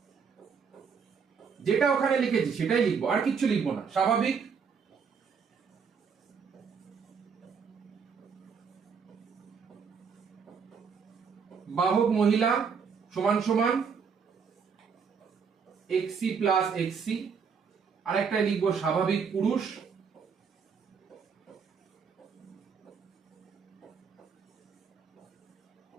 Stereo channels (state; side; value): quieter; left; 6.1 dB